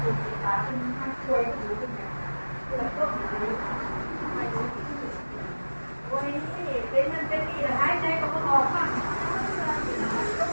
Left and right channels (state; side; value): inverted; both; correlation -1.00